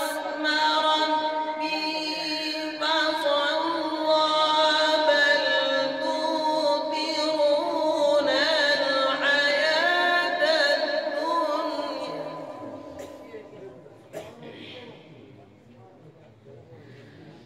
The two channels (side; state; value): both; identical; correlation 1.00